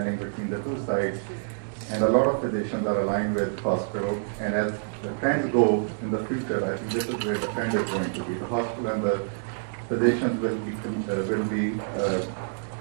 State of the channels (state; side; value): silent; left; digital silence